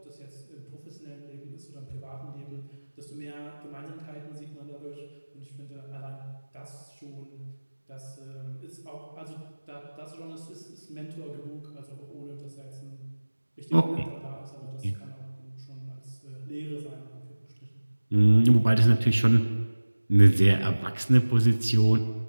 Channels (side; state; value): both; inverted; correlation -1.00